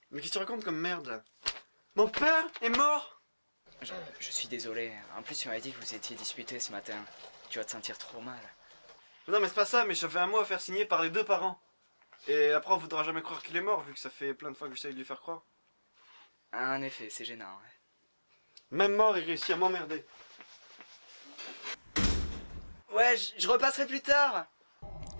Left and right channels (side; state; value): both; inverted; correlation -1.00